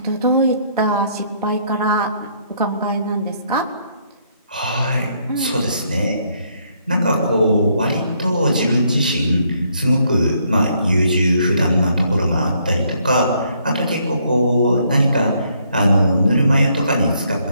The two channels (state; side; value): inverted; both; correlation -0.70